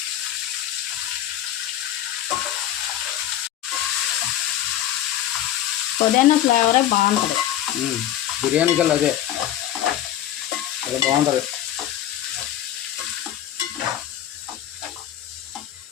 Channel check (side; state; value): right; quieter; 12.0 dB